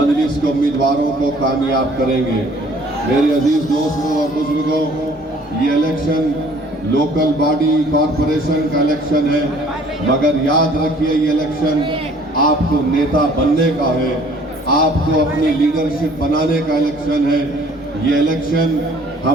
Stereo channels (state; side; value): normal; both; correlation 0.56